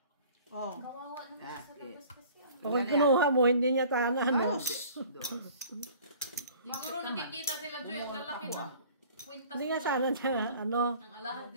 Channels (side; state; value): both; inverted; correlation -0.49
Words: Oh. Kawawa naman sa Okay. labas kasi. Kung kinuha mo, hindi niya tahanan. No? Siguro nakikita sila, Joy, at lalaki ng kwintas Hindi nga nila. sana niya, ano. Ang alahas